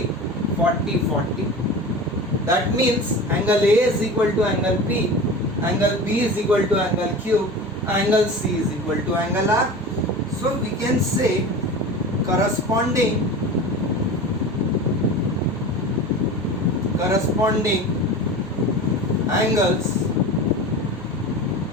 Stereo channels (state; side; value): noise; right; hum, 25 dB below the sound